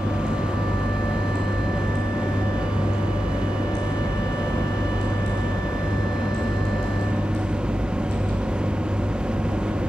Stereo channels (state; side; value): normal; both; correlation 0.92